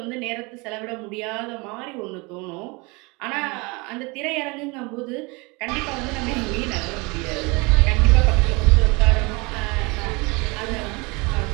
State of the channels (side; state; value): left; quieter; 27.3 dB